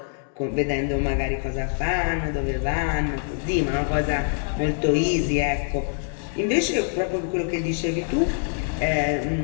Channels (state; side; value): silent; right; 58 dB below the other